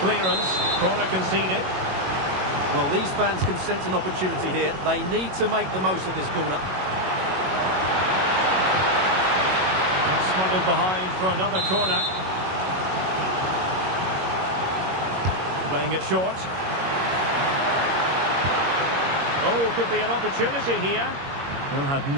Corner conceded. Well, these fans can sense an opportunity here. They need to make the most of this corner. Smuggled behind for another corner. Playing it short. Oh, could be an opportunity here. Well, had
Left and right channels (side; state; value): left; late; 21 ms